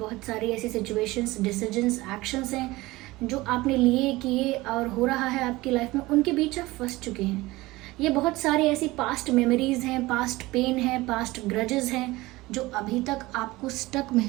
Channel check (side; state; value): left; quieter; 20.0 dB